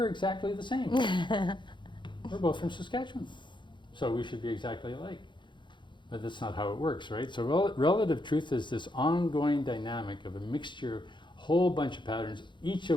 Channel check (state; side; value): late; right; 0.23 ms